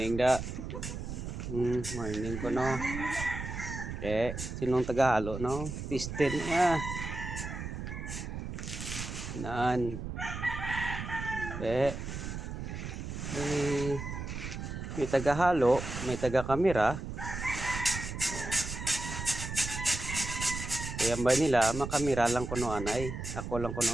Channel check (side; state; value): right; noise; rumble, 6 dB below the sound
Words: da. Morning ko no. Sinong taga-halo no? Pistin Nan. May taga-halo, may taga-kamera. Kaya ba nila, makamera lang ko no anay. Ako lang ko